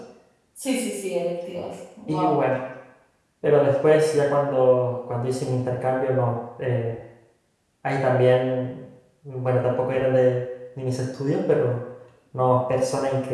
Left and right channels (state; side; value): identical; both; correlation 1.00